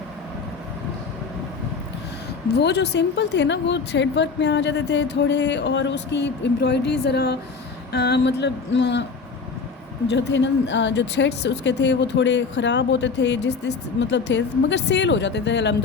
वो जो सिंपल थे ना, वो थ्रेड वर्क में आ जाते थे थोड़े, और उसकी एम्ब्रॉयडरी ज़रा मतलब जो थे ना, जो थ्रेड्स उसके थे, वो थोड़े ख़राब होते थे, जिस मतलब थे, मगर सेल हो जाते थे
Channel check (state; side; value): quieter; right; 4.8 dB